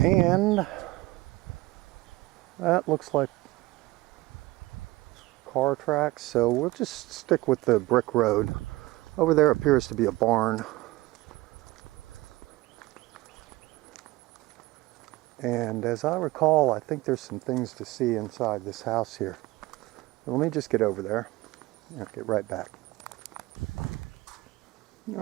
that looks like car tracks, so we'll just stick with the brick road. Over there appears to be a barn. And as I recall, I think there's some things to see inside this house here. Let me just get over there and I'll get right back.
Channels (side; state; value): left; quieter; 20.1 dB